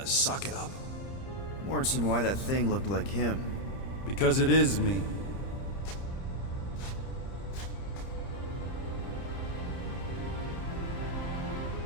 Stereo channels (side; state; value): right; late; 30 ms